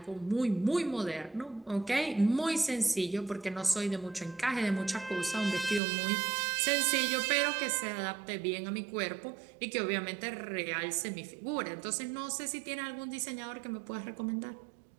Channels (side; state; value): left; drops out; at 5.8 s